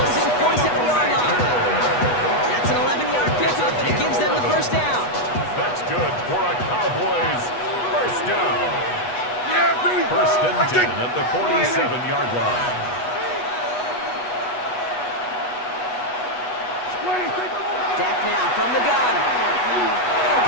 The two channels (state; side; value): late; right; 8.2 ms